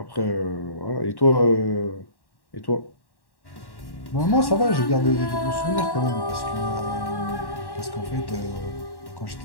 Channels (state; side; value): late; right; 1.1 ms